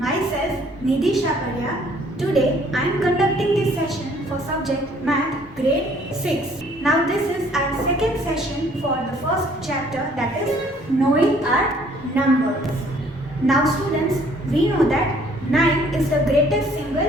Nidhi Shaparya. Today I am conducting this session for subject Math grade 6. Now this is our second session for the first chapter, that is knowing our numbers. Now students, we know that 9 is the greatest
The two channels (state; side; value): normal; both; correlation 0.60